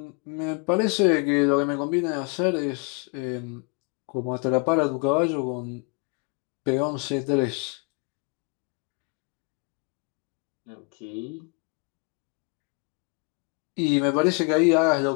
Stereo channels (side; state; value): right; quieter; 33.9 dB